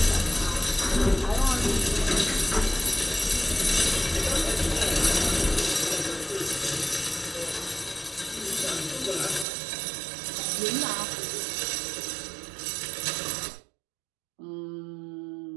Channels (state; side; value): drops out; left; at 9.5 s